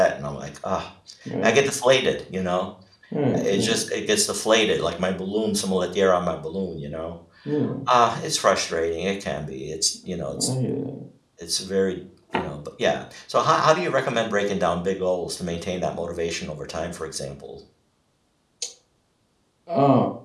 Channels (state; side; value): identical; both; correlation 1.00